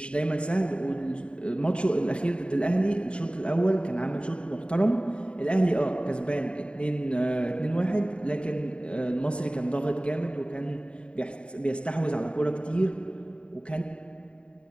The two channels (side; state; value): right; late; 0.055 ms